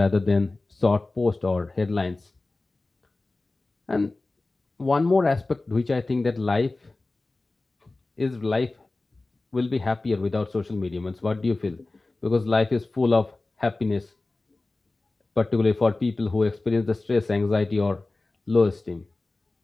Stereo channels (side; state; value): right; quieter; 3.2 dB